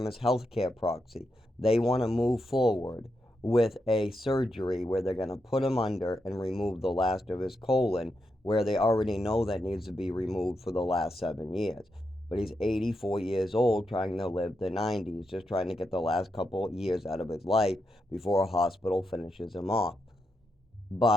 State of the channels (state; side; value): normal; both; correlation 0.84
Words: his healthcare proxy, they want to move forward with a surgery where they're going to put him under and remove the last of his colon, where they already know that needs to be removed for the last 7 years. But he's 84 years old, trying to live the 90s, just trying to get the last couple of years out of his life before a hospital finishes him off.